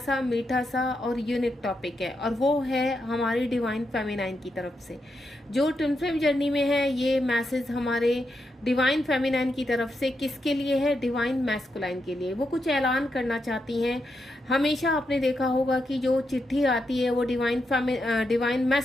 मीठा सा और यूनिक टॉपिक है, और वो है हमारी डिवाइन फेमिनाइन की तरफ से। जो ट्विन फ्लेम जर्नी में है, ये मैसेज हमारे डिवाइन फेमिनाइन की तरफ से किसके लिए है? डिवाइन मैस्कुलाइन के लिए। वो कुछ ऐलान करना चाहती हैं। हमेशा आपने देखा होगा कि जो चिट्ठी आती है वो डिवाइन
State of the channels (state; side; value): normal; both; correlation 0.84